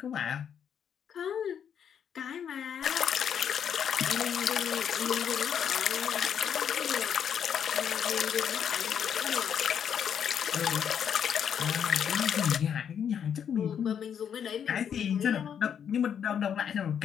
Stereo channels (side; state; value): right; quieter; 8.2 dB